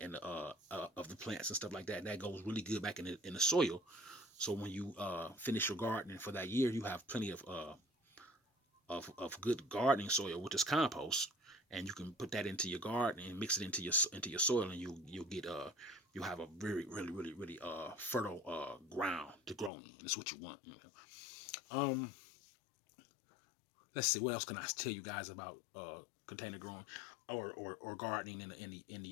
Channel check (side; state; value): right; drops out; at 19.7 s